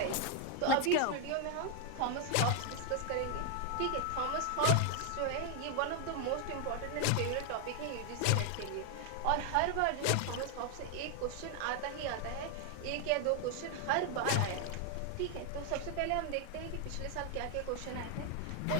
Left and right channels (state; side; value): different; both; correlation 0.00